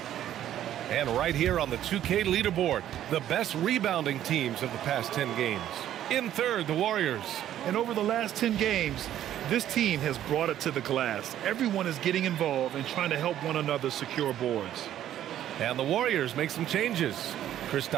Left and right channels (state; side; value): quieter; left; 11.7 dB